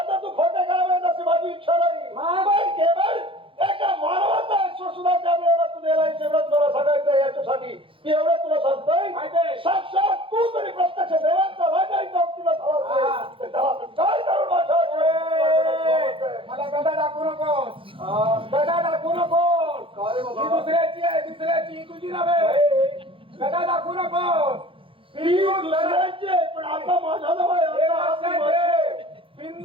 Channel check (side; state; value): left; late; 0.25 ms